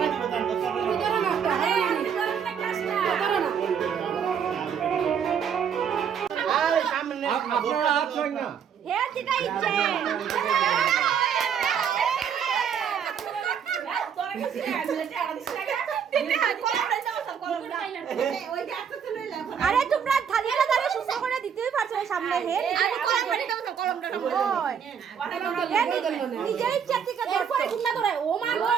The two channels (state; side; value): quieter; left; 7.7 dB